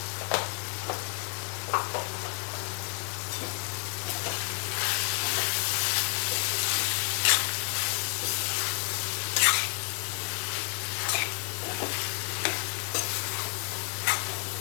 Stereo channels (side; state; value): right; quieter; 39.5 dB